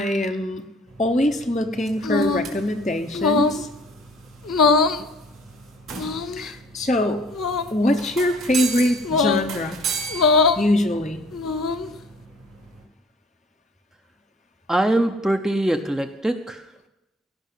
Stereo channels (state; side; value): normal; both; correlation 0.53